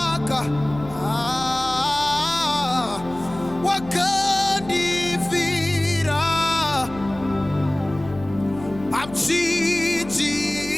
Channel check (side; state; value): left; noise; hum, 16 dB below the sound